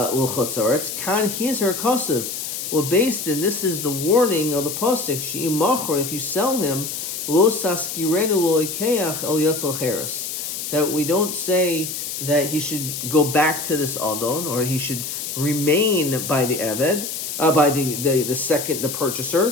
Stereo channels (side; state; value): left; noise; hiss, 5 dB below the sound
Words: kan hizer kasev. Well, based in this is the warning of the pasuk. She'im machor, if you sell him, lo saskirenu lo ikeach el yotzal cheres. That we don't say that he should go back to this adon, or he should remain by the eved, by the